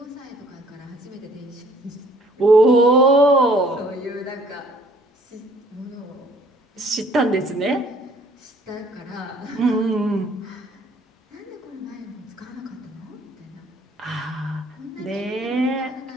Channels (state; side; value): normal; both; correlation 0.58